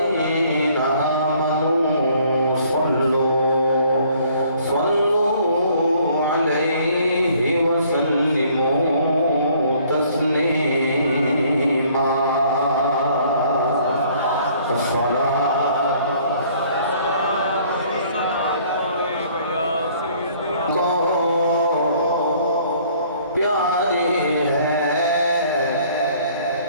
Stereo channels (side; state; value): both; inverted; correlation -0.59